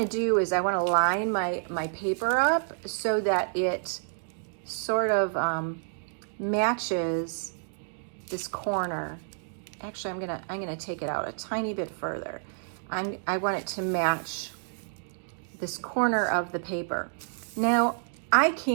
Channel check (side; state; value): left; silent; digital silence